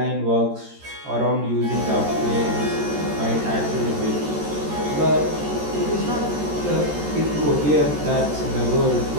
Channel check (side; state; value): left; late; 13 ms